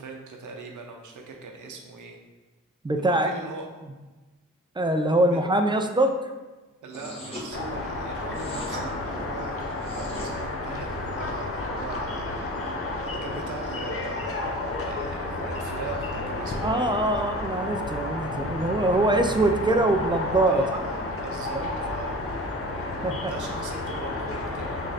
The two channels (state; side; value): normal; both; correlation 0.40